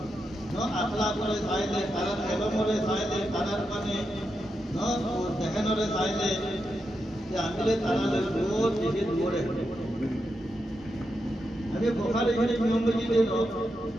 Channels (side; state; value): both; normal; correlation 0.86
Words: নো আখলাক করে সাইলে কারণ ইলম করে সাইলে কারণ মানে নো দেখেন করে সাইলে যে আমিলে তারালে রোজ দিকে দৌড়ে আমি বুখারী শরীফ নম্বরজি দেন